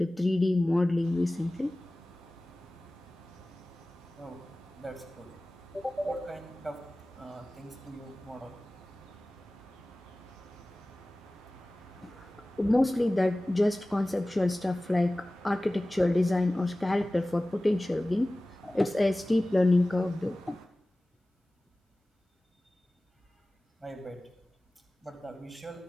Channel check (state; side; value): normal; both; correlation 0.97